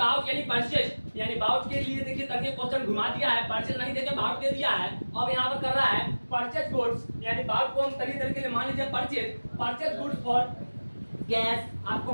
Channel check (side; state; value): both; inverted; correlation -1.00